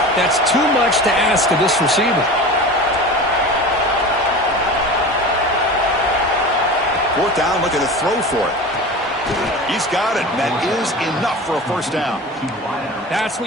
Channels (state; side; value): normal; both; correlation 0.33